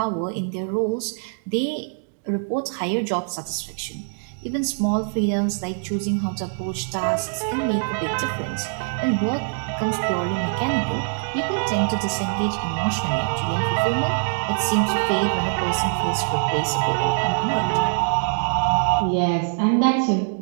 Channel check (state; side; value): silent; left; digital silence